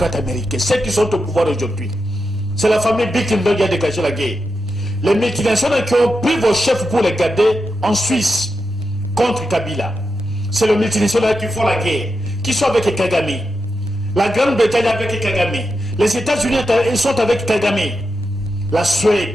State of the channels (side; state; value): both; normal; correlation 0.88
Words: américains. Ceux qui sont au pouvoir aujourd'hui. C'est la famille Bilderberg qui a déclenché la guerre. Les multinationales qui ont pris vos chefs pour les garder en Suisse contre Kabila. C'est les multinationales qui font la guerre, qui sont avec Kagame. La Grande-Bretagne avec Kagame. Les États-Unis sont avec Kagame. La